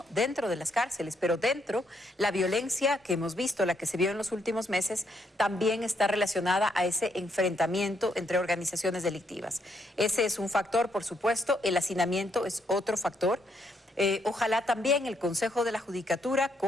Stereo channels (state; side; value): normal; both; correlation 0.75